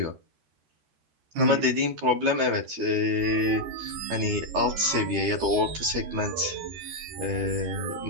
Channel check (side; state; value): left; late; 13 ms